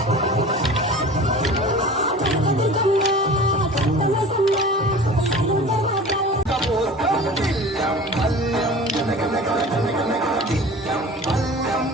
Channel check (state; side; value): normal; both; correlation 0.39